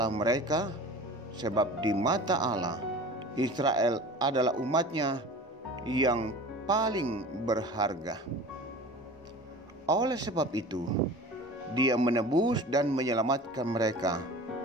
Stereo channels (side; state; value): both; normal; correlation 0.39